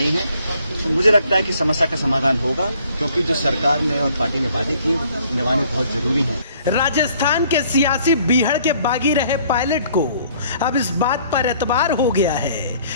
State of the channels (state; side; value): inverted; both; correlation -0.60